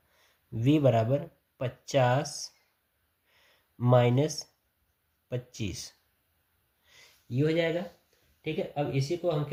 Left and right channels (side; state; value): both; identical; correlation 1.00